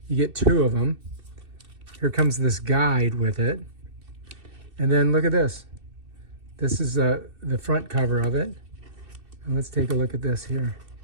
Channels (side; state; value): left; late; 2.6 ms